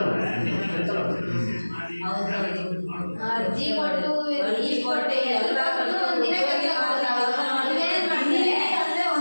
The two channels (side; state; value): both; inverted; correlation -1.00